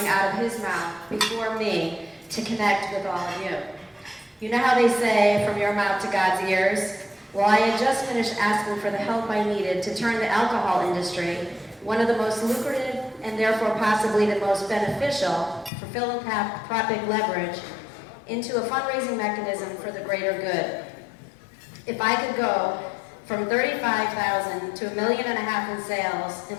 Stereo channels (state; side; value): drops out; right; at 15.7 s